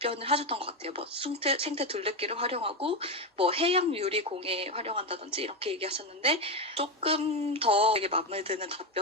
하셨던 것 같아요. 뭐 생태 둘레길을 활용하고 뭐 해양 유리공예 활용한다든지 이렇게 얘기하셨는데 조금 더 되게 마음에 드는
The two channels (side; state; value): both; normal; correlation 0.12